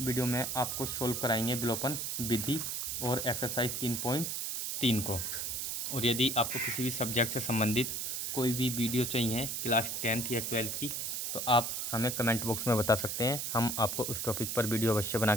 वीडियो में आपको सोल्व कराएंगे विलोपन विधि और एक्सरसाइज 3.3 को। और यदि आपको किसी भी सब्जेक्ट से संबंधित कोई भी वीडियो चाहिए क्लास 10th या 12th की तो आप हमें कमेंट बॉक्स में बता सकते हैं, हम आपको उस टॉपिक पर वीडियो अवश्य बना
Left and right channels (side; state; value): right; noise; hiss, 2 dB below the sound